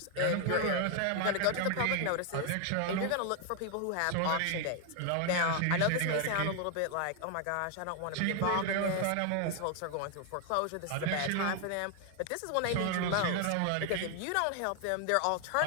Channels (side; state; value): both; different; correlation 0.01